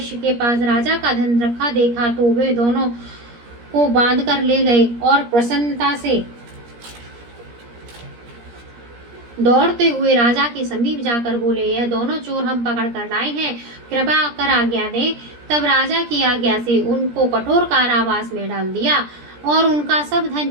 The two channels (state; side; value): late; left; 17 ms